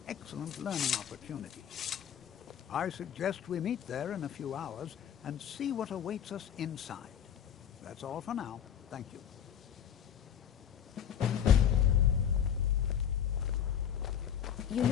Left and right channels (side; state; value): right; quieter; 9.0 dB